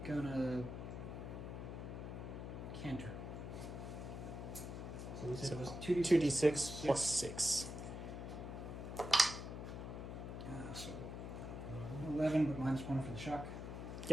gonna canter. So we said it was 2d6 plus 6. So 11, but minus 1 for the shock.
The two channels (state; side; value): noise; left; hum, 6 dB below the sound